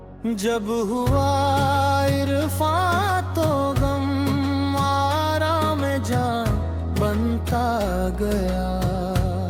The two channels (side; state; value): both; identical; correlation 1.00